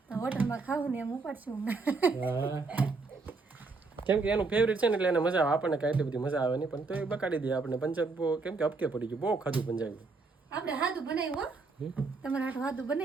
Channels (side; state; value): left; quieter; 4.0 dB